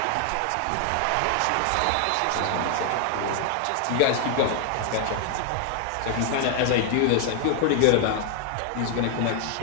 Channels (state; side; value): different; both; correlation 0.00